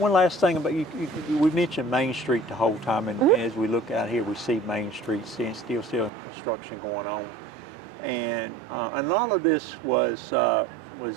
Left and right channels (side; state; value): left; drops out; at 6.1 s